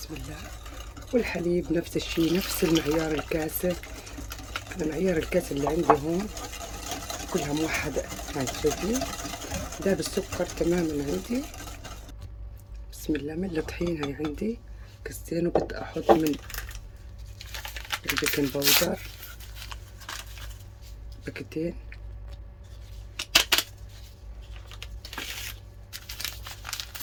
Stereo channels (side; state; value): both; identical; correlation 1.00